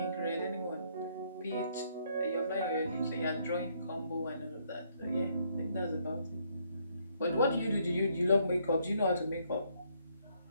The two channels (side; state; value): both; inverted; correlation -0.70